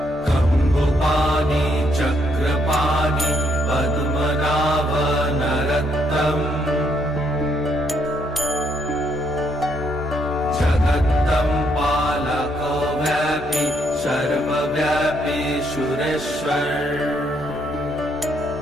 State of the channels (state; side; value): normal; both; correlation 0.73